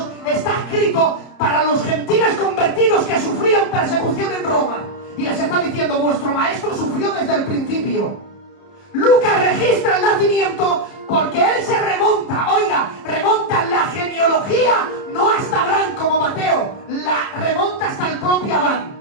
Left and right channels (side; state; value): right; late; 30 ms